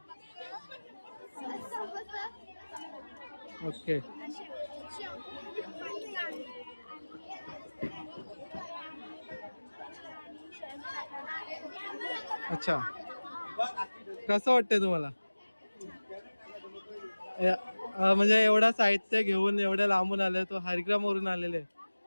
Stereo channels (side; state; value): both; inverted; correlation -1.00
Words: ओके अच्छा. कसं वाटतंय तुम्हाला? म्हणजे एवढा साहित्य घेऊन एवढ्या लांबून आले तो हरिग्रामवरून आलेले